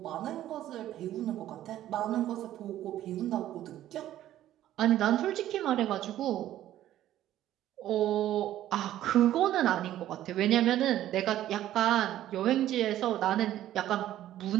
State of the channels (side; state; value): left; quieter; 12.9 dB